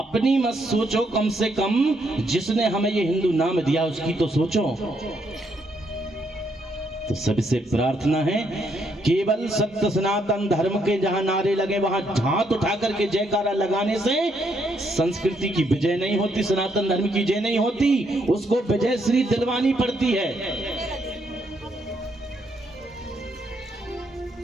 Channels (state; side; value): normal; both; correlation 0.74